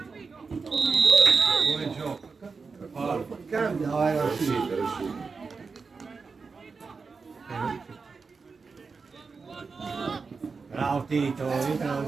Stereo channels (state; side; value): quieter; left; 4.8 dB